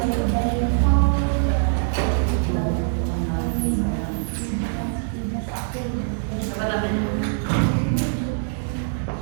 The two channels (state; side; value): silent; left; digital silence